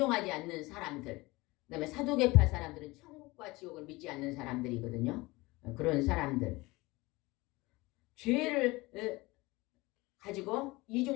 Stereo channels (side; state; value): right; quieter; 22.0 dB